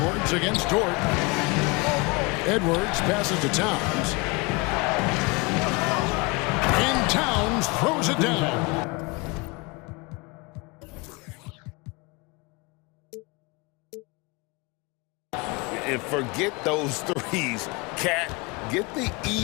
against Dort. Edwards passes to Towns. And Towns throws it down. And forget those threes, Cat. Get the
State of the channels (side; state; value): right; quieter; 26.9 dB